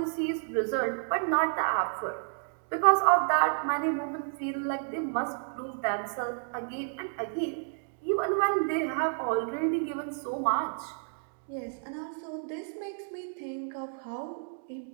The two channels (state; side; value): silent; left; digital silence